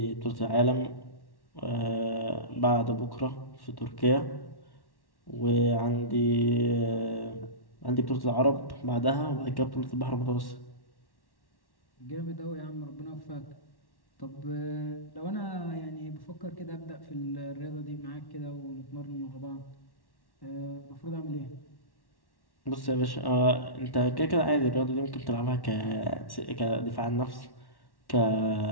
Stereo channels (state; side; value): late; right; 1.1 ms